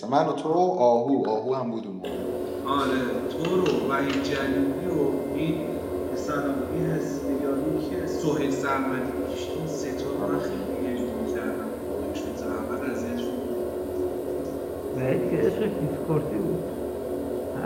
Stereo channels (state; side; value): identical; both; correlation 1.00